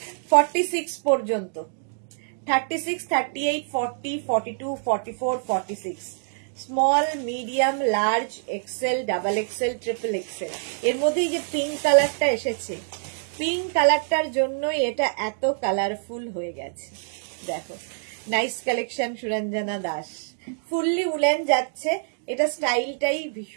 46 পর্যন্ত, 36, 38, 40, 42, 44, 46, small, medium, large, XL, double XL, triple XL. এর মধ্যে যে পিঙ্ক কালারটা এসেছে, পিঙ্ক কালারটার জন্যই এটা এত কালারফুল হয়ে গেছে। দেখো, nice collection, Suranjana Das. Fully woollen যাচ্ছে, এটা স্টাইলটাই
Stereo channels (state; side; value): silent; left; digital silence